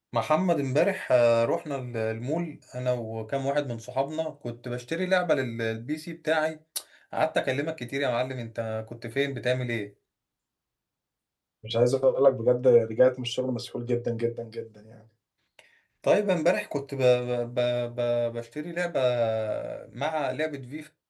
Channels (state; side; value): identical; both; correlation 1.00